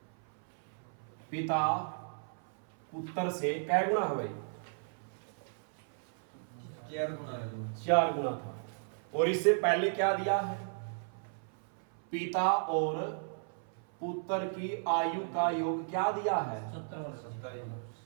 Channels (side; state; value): left; silent; 55 dB below the other